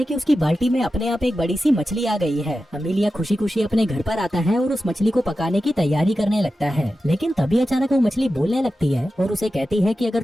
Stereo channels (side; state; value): both; normal; correlation 0.92